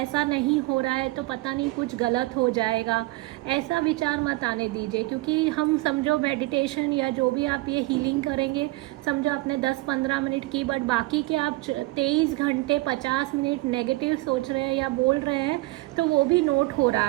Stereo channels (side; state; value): left; quieter; 20.8 dB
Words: नहीं हो रहा है तो पता नहीं कुछ गलत हो जाएगा, ऐसा विचार मत आने दीजिए। क्योंकि हम समझो मेडिटेशन या जो भी आप ये हीलिंग करेंगे, समझो आपने 10-15 मिनट की, बट बाकी के आप 23 घंटे 50 मिनट नेगेटिव सोच रहे हैं या बोल रहे हैं, तो वो भी नोट हो